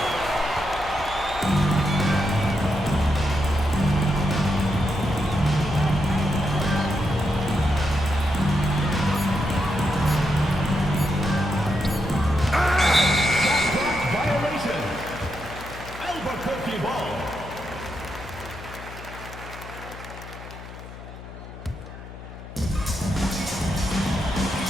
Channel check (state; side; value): noise; left; hum, 14 dB below the sound